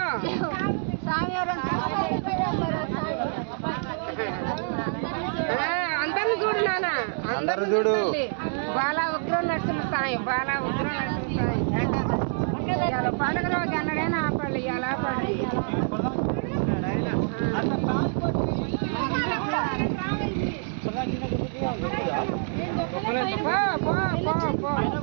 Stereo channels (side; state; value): left; silent; digital silence